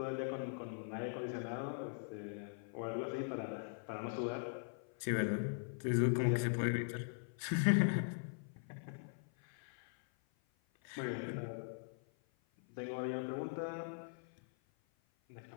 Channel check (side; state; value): right; silent; 50 dB below the other